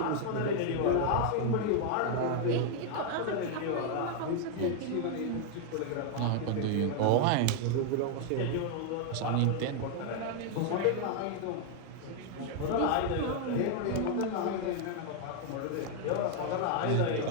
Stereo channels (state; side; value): different; both; correlation 0.00